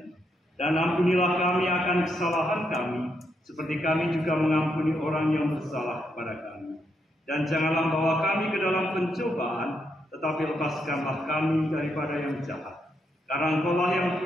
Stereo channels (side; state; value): both; normal; correlation 0.79